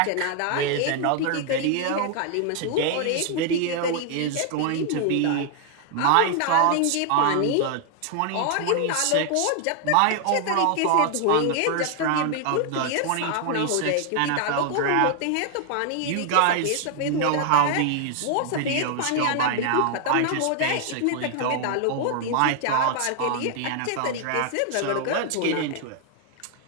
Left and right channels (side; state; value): both; different; correlation 0.00